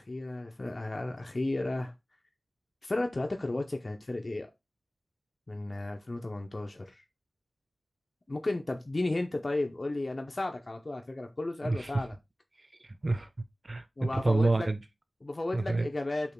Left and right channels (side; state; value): both; normal; correlation 0.97